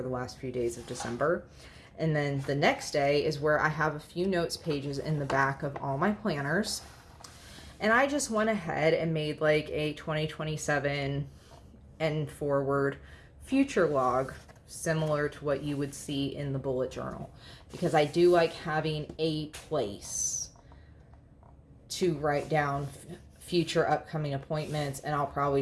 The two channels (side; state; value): both; identical; correlation 1.00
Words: the last few days of December. And then the next day is where I have a few notes pages in the back of all my planners. And I just went ahead and made like a 2027 and forward future log, similar to what you would see in the bullet journal, because I do like having a place to write down future upcoming appointments. And I'll probably